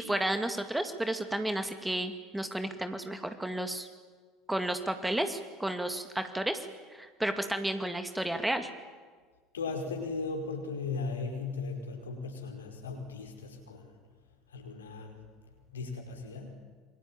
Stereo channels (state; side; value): normal; both; correlation 0.73